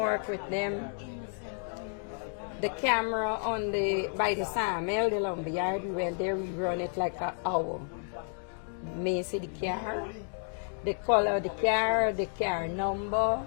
The camera on by the sawmill, the lumberyard, we went there, we run it like an hour. may see the car, the color of the car number.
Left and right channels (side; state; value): right; silent; 57 dB below the other